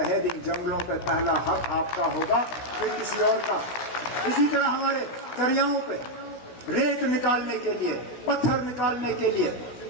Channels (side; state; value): right; late; 16 ms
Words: ان جنگلوں پہ پہلا حق آپ کا ہوگا، پھر کسی اور کا۔ اسی طرح ہمارے دریاؤں پہ ریت نکالنے کے لیے، پتھر نکالنے کے لیے،